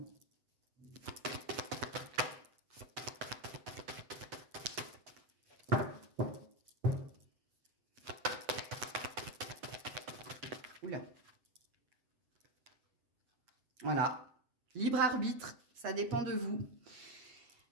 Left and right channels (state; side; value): late; left; 7.8 ms